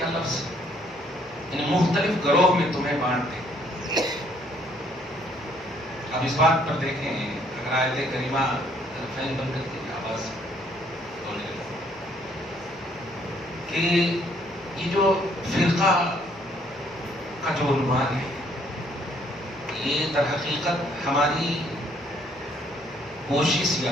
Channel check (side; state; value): left; noise; hum, 28 dB below the sound